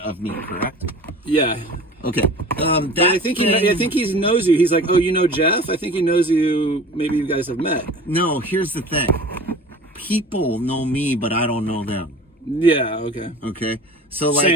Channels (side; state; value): both; normal; correlation 0.40